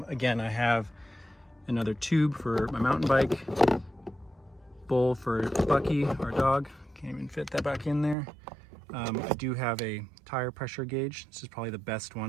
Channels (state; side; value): drops out; left; at 8.2 s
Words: I have another tube for my mountain bike, bowl for Bucky, our dog. Can't even fit that back in there. I do have a tire pressure gauge. This is probably the best